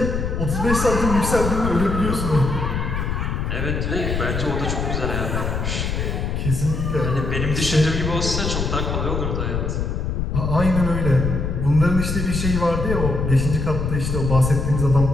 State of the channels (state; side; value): noise; left; rumble, 1 dB below the sound